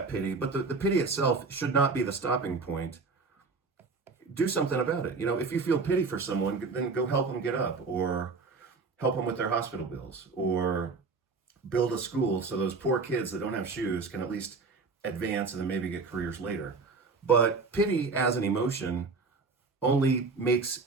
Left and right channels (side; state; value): left; quieter; 4.3 dB